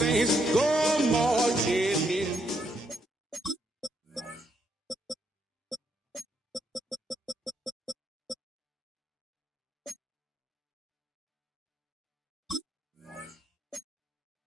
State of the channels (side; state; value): both; normal; correlation 0.75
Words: go marching in.